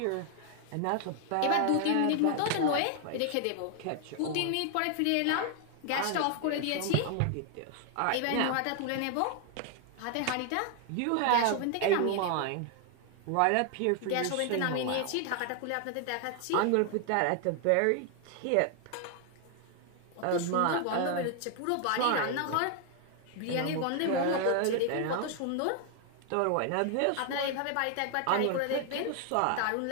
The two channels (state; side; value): different; both; correlation 0.00